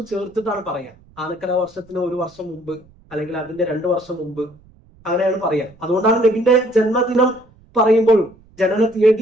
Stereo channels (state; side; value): noise; right; rumble, 29 dB below the sound